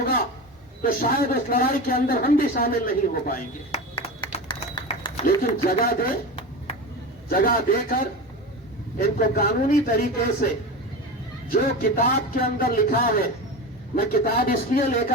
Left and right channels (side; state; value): both; normal; correlation 0.26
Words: तो शायद उस लड़ाई के अंदर हम भी शामिल नहीं हो पाएंगे। लेकिन जगह देकर इनको कानूनी तरीके से जो किताब के अंदर लिखा है, मैं किताब इसलिए